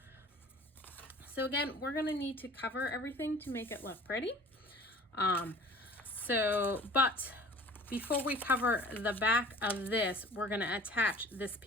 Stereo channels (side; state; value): both; normal; correlation 0.46